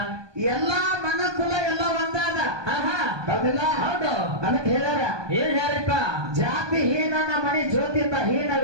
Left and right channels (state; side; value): late; left; 1.2 ms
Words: ಎಲ್ಲಾ ಮನಕುಲ ಎಲ್ಲ ಒಂದಾದ. ಹೌದಿಲ್ಲ? ಹೌದು. ಅದಕ್ಕೆ ಹೇಳ್ಯಾರ, ಏನ್ ಹೇಳ್ರಿಪ್ಪ? ಜಾತಿ ಹೀನನ ಮಣಿ ಜ್ಯೋತಿತ